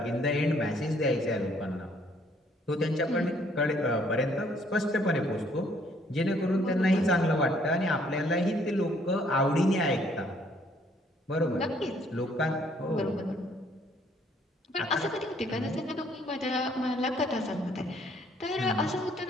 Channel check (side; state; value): both; normal; correlation 0.64